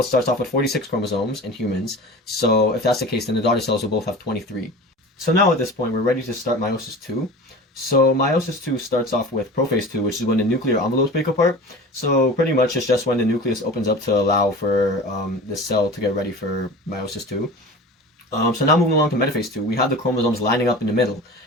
starts off with 46 chromosomes in humans. So if that's the case, then the daughter cells will both have 23. So now at this point, we're ready to start meiosis 2. So meiosis 2 starts off with prophase 2, which is when the nuclear envelopes break apart. So pretty much it's just when the nucleus opens up to allow for the cell to get ready for meiosis 2. So now moving along to metaphase 2, we have the chromosomes lining up in the middle.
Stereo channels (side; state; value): both; normal; correlation 0.36